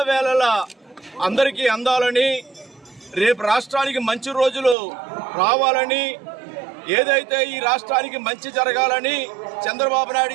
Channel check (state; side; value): drops out; left; at 4.8 s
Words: అందరికీ అందాలని, రేపు రాష్ట్రానికి మంచి రోజులు రావాలని, ఏదైతే ఈ రాష్ట్రానికి మంచి జరగాలని చంద్రబాబు